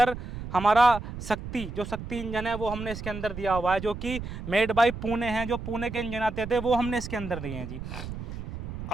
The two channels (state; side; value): noise; right; rumble, 9 dB below the sound